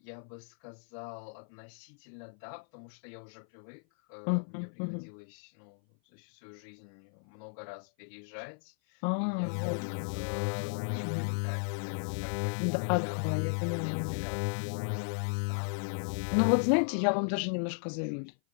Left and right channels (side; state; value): right; silent; 55 dB below the other